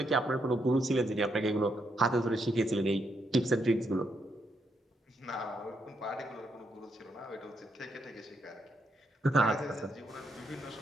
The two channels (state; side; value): normal; both; correlation 0.78